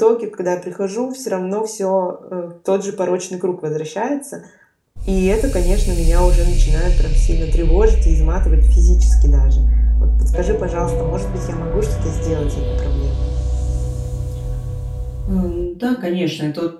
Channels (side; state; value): both; identical; correlation 1.00